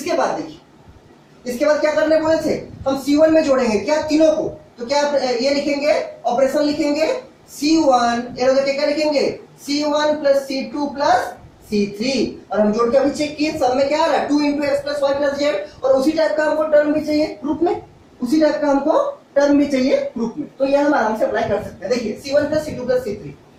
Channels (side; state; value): both; identical; correlation 1.00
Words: बाद देखिए, इसके बाद क्या करने बोले थे, हम C1 में जोड़ेंगे क्या तीनों को। तो क्या ये लिखेंगे, ऑपरेशन लिखेंगे C1, क्या लिखेंगे C1 plus C2 plus C3 और हम जोड़ के अभी चेक किए, सब में क्या आ रहा है 2 into x plus y plus z. और उसी टाइप का हमको टर्म भी चाहिए ग्रुप में, उसी टाइप का हमको टर्म भी चाहिए ग्रुप में। तो ये हम आराम से अप्लाई कर सकते हैं। देखिए C1 plus C2 plus C3,